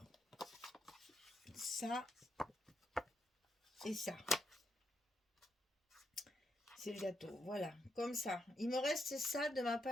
ça et ça. C'est le gâteau, voilà, comme ça. Il me reste ça de ma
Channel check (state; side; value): normal; both; correlation 0.79